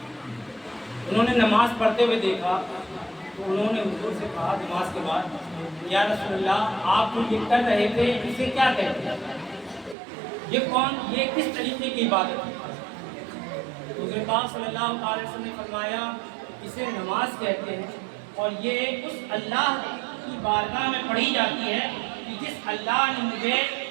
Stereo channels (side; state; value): left; drops out; at 10.0 s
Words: انہوں نے نماز پڑھتے ہوئے دیکھا تو انہوں نے حضور سے کہا نماز کے بعد، یا رسول اللہ، آپ جو یہ کر رہے تھے اسے کیا کہتے ہیں؟ یہ کس طریقے کی عبادت ہے؟ حضور پاک صلی اللہ علیہ وسلم نے فرمایا اسے نماز کہتے ہیں، اور یہ اس اللہ کی بارگاہ میں پڑھی جاتی ہے کہ جس اللہ نے مجھے